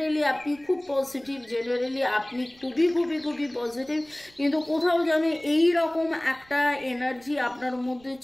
আপনি খুব পজিটিভ, জেনারেলি আপনি খুবই খুবই খুবই পজিটিভ, কিন্তু কোথাও যেন এই রকম একটা এনার্জি আপনার মধ্যে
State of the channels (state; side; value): noise; right; rumble, 28 dB below the sound